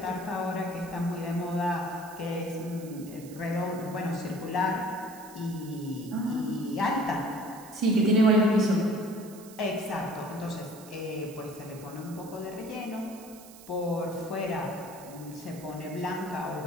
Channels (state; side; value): noise; right; hiss, 19 dB below the sound